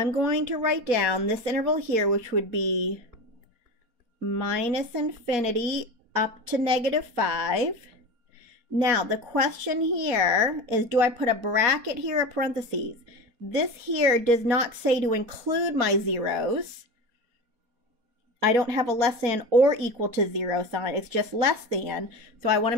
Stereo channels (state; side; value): late; left; 4.2 ms